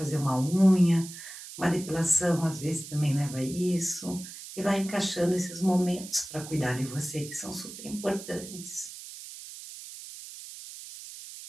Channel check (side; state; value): right; noise; hiss, 13 dB below the sound